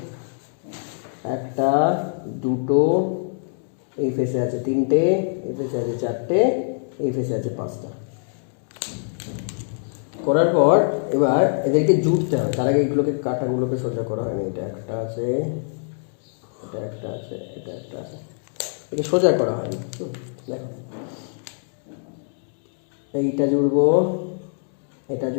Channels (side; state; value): right; silent; digital silence